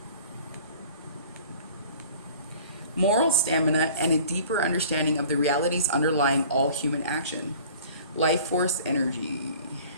moral stamina, and a deeper understanding of the realities underlying all human action. Life force energy.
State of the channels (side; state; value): both; inverted; correlation -0.47